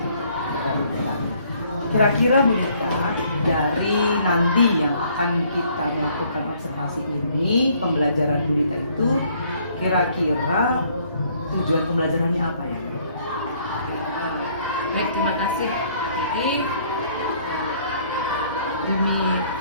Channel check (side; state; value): both; inverted; correlation -0.63